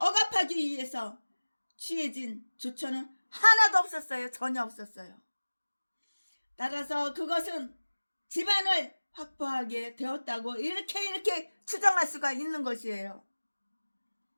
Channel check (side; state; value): both; inverted; correlation -1.00